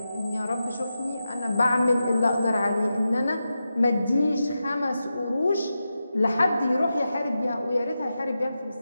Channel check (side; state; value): both; inverted; correlation -0.90